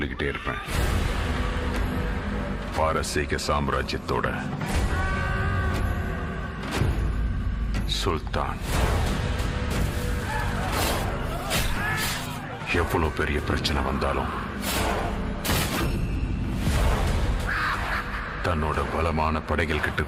இருப்பேன். பாரசீக சாம்ராஜ்யத்தோட சுல்தான் எவ்வளவு பெரிய பிரச்சனை வந்தாலும் தன்னோட பலமான படைகள் கிட்ட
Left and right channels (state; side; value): identical; both; correlation 1.00